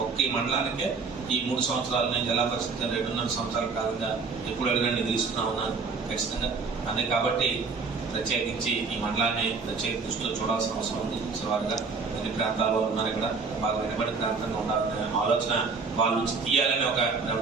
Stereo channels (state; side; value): quieter; left; 4.7 dB